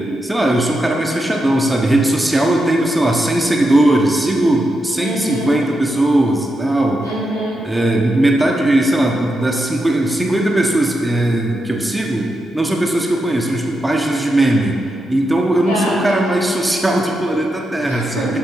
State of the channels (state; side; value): normal; both; correlation 0.86